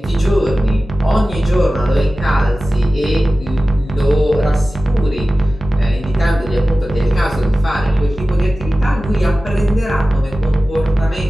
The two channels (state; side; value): normal; both; correlation 0.95